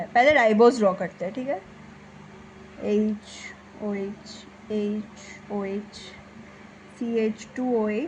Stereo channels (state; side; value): identical; both; correlation 1.00